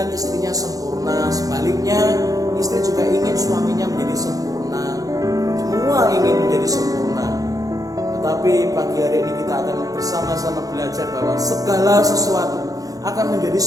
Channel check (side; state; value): left; late; 0.17 ms